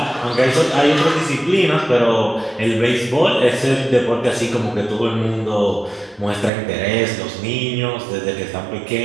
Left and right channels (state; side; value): drops out; left; at 6.5 s